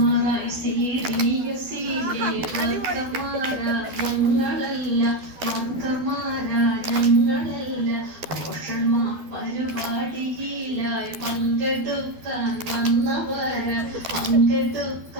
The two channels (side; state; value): left; late; 12 ms